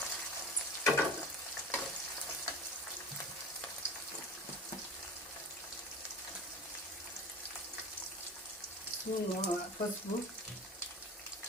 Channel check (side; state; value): both; normal; correlation 0.34